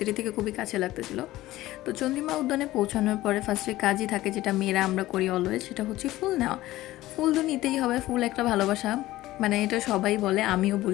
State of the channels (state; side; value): quieter; right; 16.5 dB